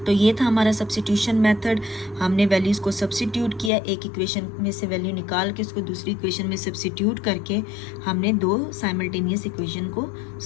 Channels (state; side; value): drops out; right; at 3.7 s